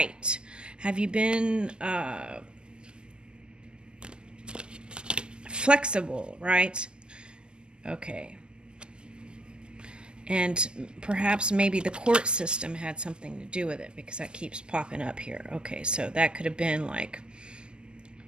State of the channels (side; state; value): left; late; 0.048 ms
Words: Have you been flexible, right? Okay. And perhaps maybe the court system had something to do with it because that keeps popping up here. Okay, so that could have been like